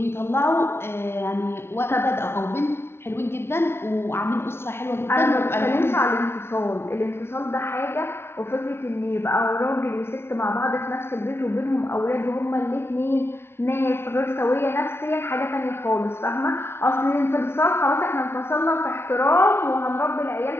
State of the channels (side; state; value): right; late; 0.12 ms